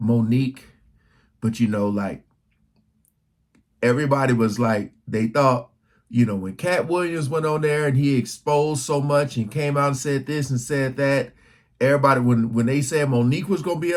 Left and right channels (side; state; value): both; identical; correlation 1.00